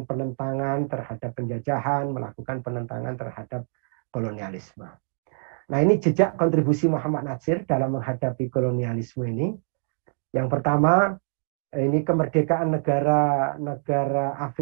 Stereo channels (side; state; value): left; silent; digital silence